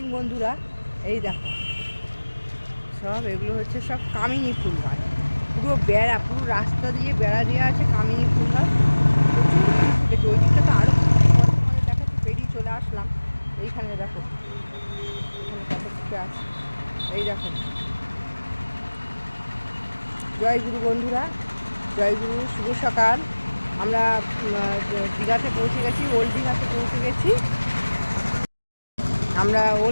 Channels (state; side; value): inverted; both; correlation -1.00